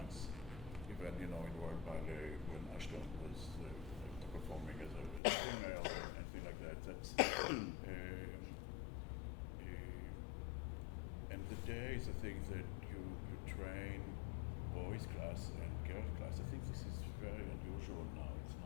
Even, you know, in Royal Ballet, when Ashton was performing as a female and things like that. That's and the days, I think that you train boys class and girls class. I think this is very unusual now. It's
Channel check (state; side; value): drops out; right; at 5.2 s